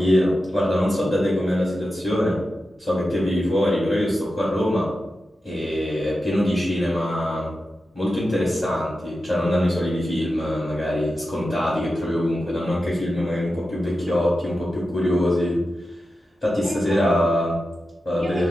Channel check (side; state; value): both; normal; correlation 0.91